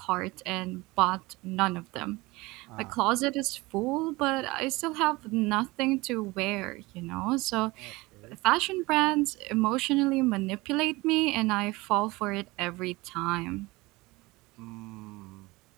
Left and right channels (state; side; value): quieter; left; 22.1 dB